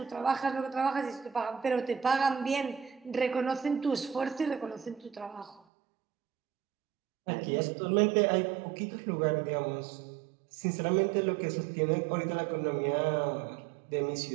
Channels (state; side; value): drops out; left; at 5.6 s